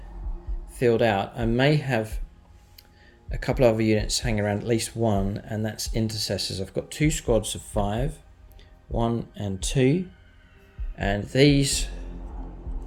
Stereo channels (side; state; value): both; identical; correlation 1.00